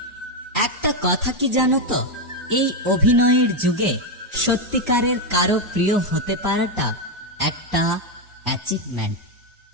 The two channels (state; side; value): normal; both; correlation 0.05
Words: একটা কথা কি জানো তো, এই অভিনয়ের যুগে সত্যিকারের কারো প্রিয় হতে পারাটা একটা অ্যাচিভমেন্ট।